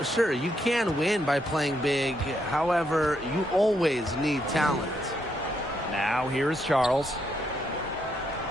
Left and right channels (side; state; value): both; normal; correlation 0.77